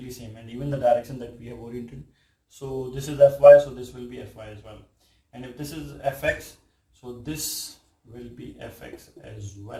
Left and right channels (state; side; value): identical; both; correlation 1.00